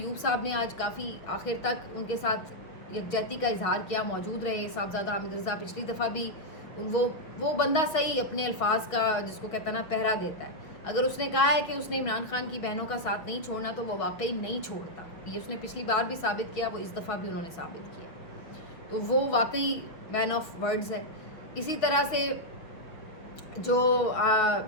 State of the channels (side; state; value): right; late; 6.2 ms